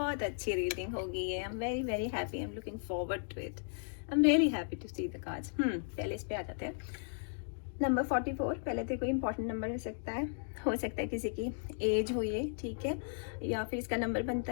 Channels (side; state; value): right; silent; digital silence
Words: अच्छी रीडिंग होगी ये। I am very very happy, I am looking forward to it. I am really happy to see the cards. पहले इस पे आ जाते हैं। नंबर 44 पहले तो कोई इंपॉर्टेंट नंबर हो सकता है किसी की एज हो ये, ठीक है, या फिर इसका नंबर बनता